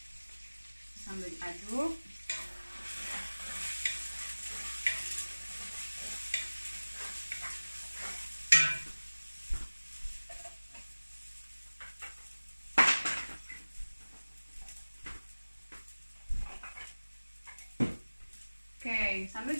Sambil diaduk. Oke, sambil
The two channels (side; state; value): both; inverted; correlation -1.00